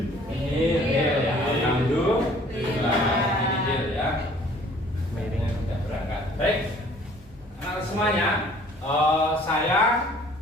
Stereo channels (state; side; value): normal; both; correlation 0.55